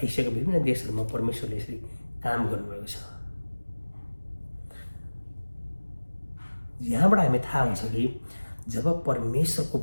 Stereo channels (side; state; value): both; inverted; correlation -1.00